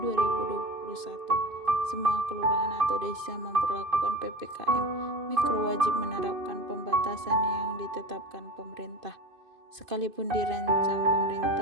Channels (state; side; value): late; left; 2.5 ms